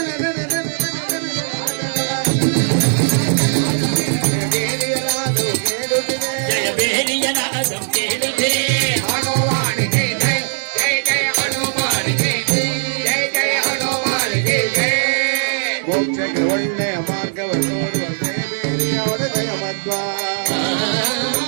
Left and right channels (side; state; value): left; silent; digital silence